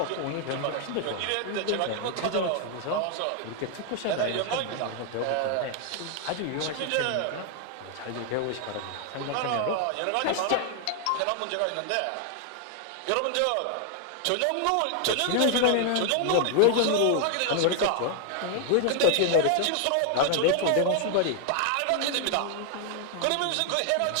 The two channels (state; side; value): different; both; correlation 0.00